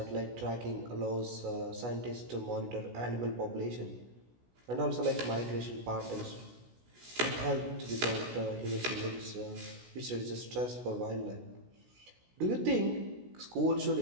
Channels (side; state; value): left; late; 16 ms